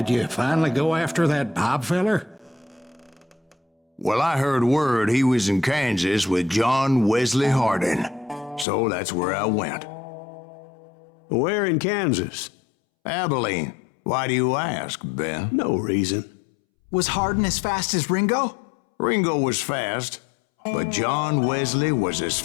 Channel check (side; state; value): right; drops out; at 8.7 s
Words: you finally go after that Bob feller? Well, I heard word he was in Kansas with John Wesley Hardin. So that's where I went. Where in Kansas? Abilene. Why do you ask, Ben? No reason. Was Hardin as fast as Ringo? Ringo was fast, but John Wesley was as